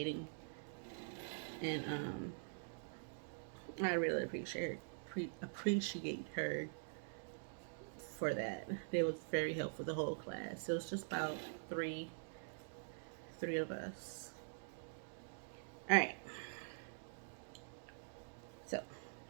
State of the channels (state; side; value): silent; left; digital silence